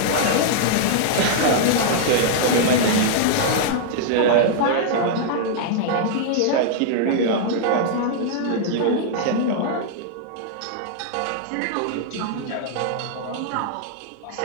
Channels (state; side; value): different; both; correlation -0.01